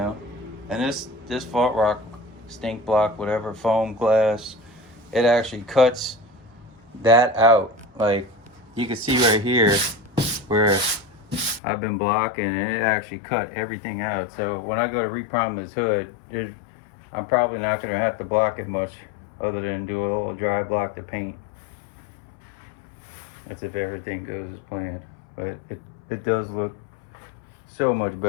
And this fault rock, stink block, whatever, foam glass, it actually cuts that out. Like, you can see right here where I've been blocking, and it actually cut everything out. So when I go to reprime this hood, I'm probably not going to have to block it much, other than do a little dry block to paint. That's if everything goes as planned. But it does look so much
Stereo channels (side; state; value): right; drops out; at 11.6 s